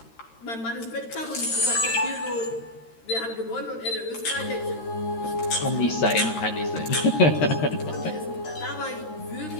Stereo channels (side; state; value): right; late; 13 ms